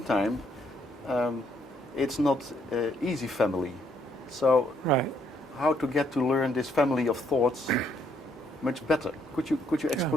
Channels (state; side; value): normal; both; correlation 0.71